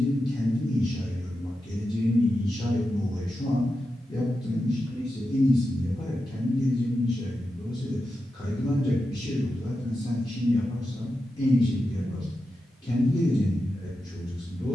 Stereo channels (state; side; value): normal; both; correlation 0.90